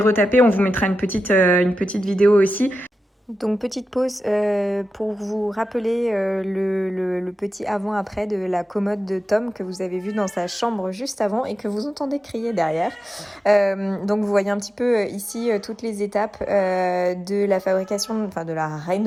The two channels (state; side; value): normal; both; correlation 0.92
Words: on vous mettra une petite vidéo aussi. Donc petite pause pour vous rappeler le petit avant-après de la commode de Tom que vous avez vu dans sa chambre juste avant et que vous entendez crier derrière. Donc vous voyez un petit peu ici toutes les étapes de la fabrication, enfin de la